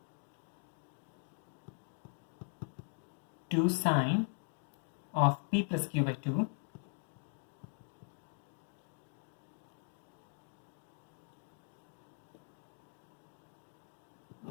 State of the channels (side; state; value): right; silent; 51 dB below the other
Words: sine of p plus q by 2